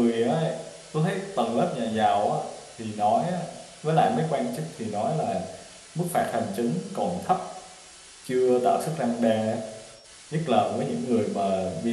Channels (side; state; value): both; identical; correlation 1.00